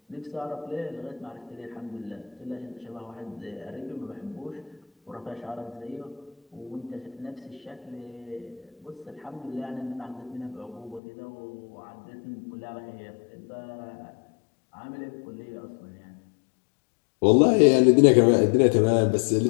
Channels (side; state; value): right; drops out; at 11.0 s